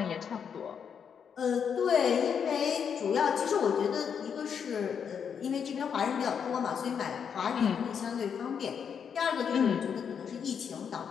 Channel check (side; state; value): right; quieter; 7.3 dB